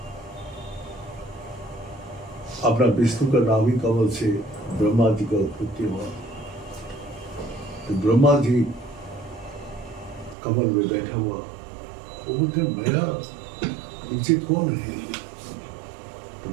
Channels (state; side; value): drops out; left; at 10.4 s